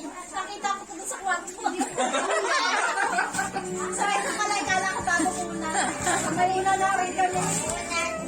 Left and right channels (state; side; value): identical; both; correlation 1.00